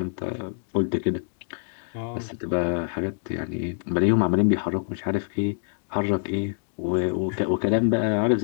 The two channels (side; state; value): right; silent; digital silence